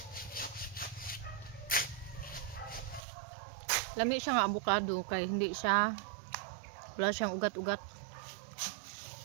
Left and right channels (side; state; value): left; drops out; at 3.0 s